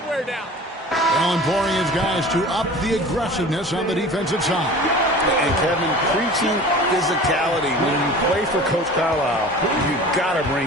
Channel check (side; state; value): both; normal; correlation 0.40